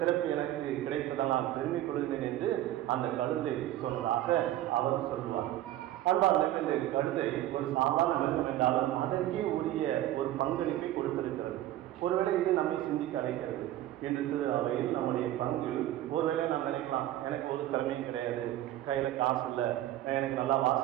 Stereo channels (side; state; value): left; quieter; 14.0 dB